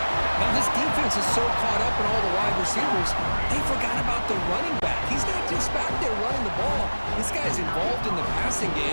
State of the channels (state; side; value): inverted; both; correlation -1.00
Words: Now, this defense is so caught up in all the wide receivers, they forgot about the running back. He's not just back there running the ball. This guy's involved in the passing